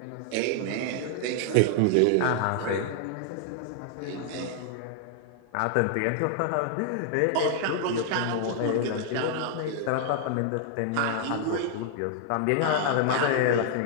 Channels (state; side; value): different; both; correlation 0.00